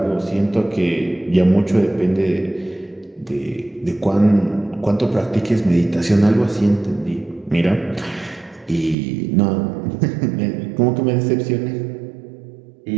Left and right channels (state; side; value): drops out; left; at 9.0 s